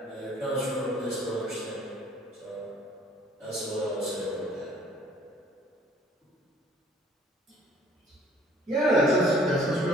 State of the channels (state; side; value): normal; both; correlation 0.56